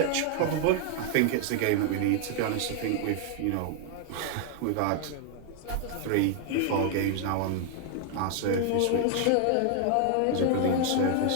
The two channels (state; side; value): different; both; correlation 0.00